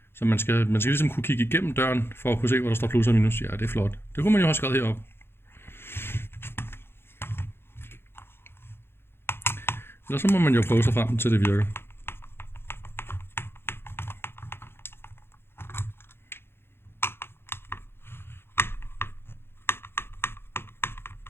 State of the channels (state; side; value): late; right; 0.11 ms